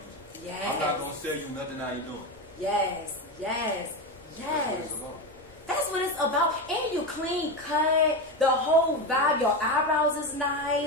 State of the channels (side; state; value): both; normal; correlation 0.17